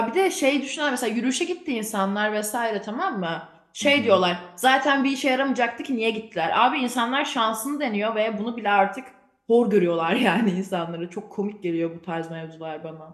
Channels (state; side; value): identical; both; correlation 1.00